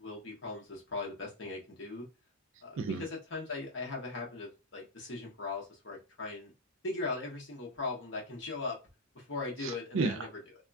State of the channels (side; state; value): both; normal; correlation 0.07